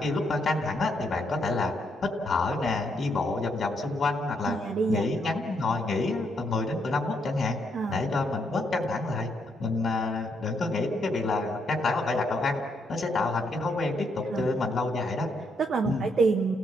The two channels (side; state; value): both; normal; correlation 0.76